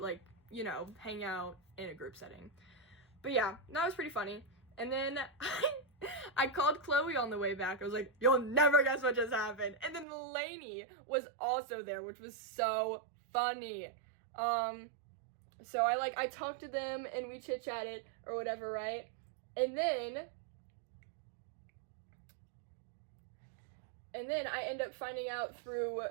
like, you know, hang out in a group setting. But yeah, that was pretty funny. And then I called Chloe on the way back. I was like, you'll never guess what just happened. And then Lainey was also there, which was so funny. So I talked to them and we chit-chatted or whatever, right? And then I end up finding out through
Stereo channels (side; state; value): left; drops out; at 10.1 s